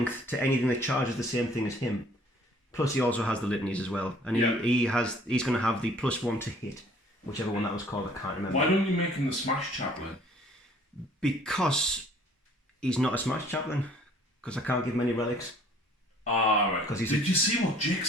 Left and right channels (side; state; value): both; normal; correlation 0.56